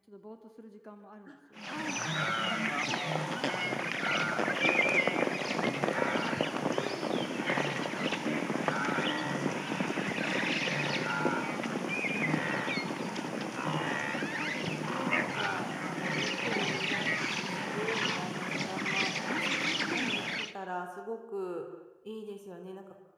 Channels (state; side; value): identical; both; correlation 1.00